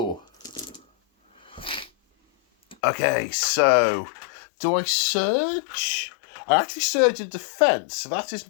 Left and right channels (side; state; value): right; drops out; at 2.8 s